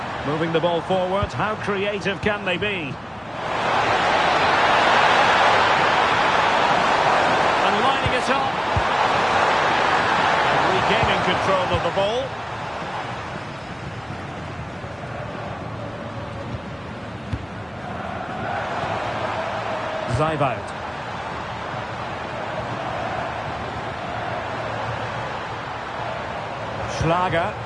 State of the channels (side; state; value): left; noise; hum, 27 dB below the sound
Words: Moving the ball forward. How creative can they be? And lining it up. And regaining control of the ball. Zaivout. Schlager.